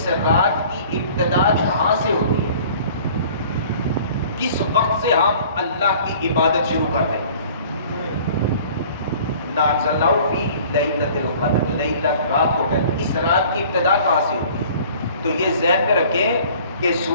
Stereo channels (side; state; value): both; inverted; correlation -0.49